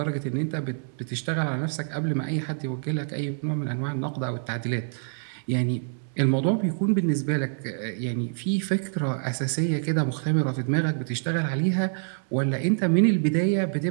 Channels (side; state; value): left; silent; 61 dB below the other